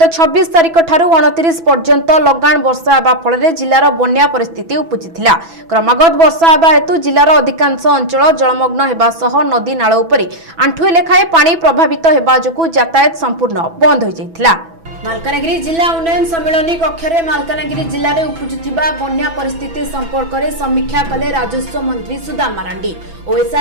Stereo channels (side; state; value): left; late; 6.0 ms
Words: 26 तारिख ठारू 29 पर्यंत लगाण वर्षा हेबा फल जिलार बन्या परिस्थिति उपजिथिला। क्रमागत वर्षा हेबा हेतु जिलार अधिकांश अंचल जलमग्न हेबा सह नदी नाल उपरि आंठुए लेखाए पानी प्रभावित हेबा जोगु यातायात संपूर्ण बंद हो जाइथिला। मालकानगिरी जिला उन्नयन सम्मेलनी कक्ष में मालकानगिरी जिले में उपजुथिबा बन्या परिस्थिति संपर्क में समीक्षा कले राजस्व मंत्री सुदाम मारांडी और